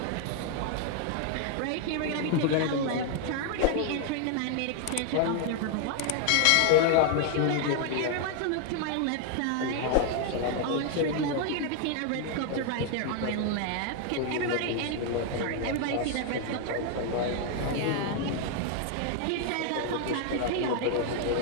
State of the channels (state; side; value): different; both; correlation 0.00